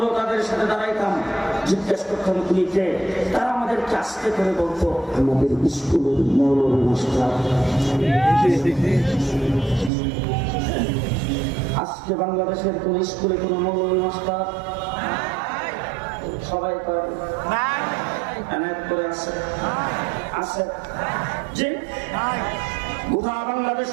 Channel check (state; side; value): drops out; left; at 9.9 s